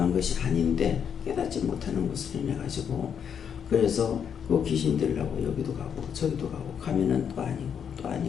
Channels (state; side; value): quieter; right; 7.7 dB